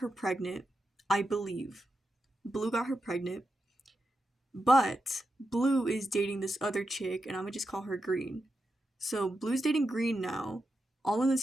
pregnant, I believe. Blue got her pregnant, but Blue is dating this other chick, and I'm gonna just call her Green. So Blue's dating Green now, all in the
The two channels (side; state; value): both; normal; correlation 0.87